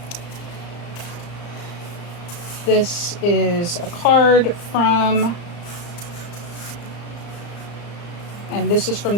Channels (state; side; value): late; right; 35 ms